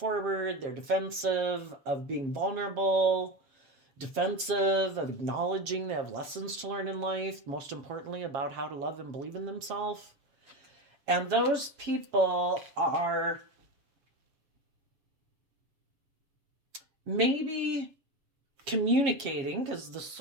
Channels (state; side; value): late; left; 7.5 ms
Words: They're defensive of being vulnerable, defensive of acknowledging they have lessons to learn in life, most importantly, about how to love and believe in themselves. And those people are maybe communicating, because the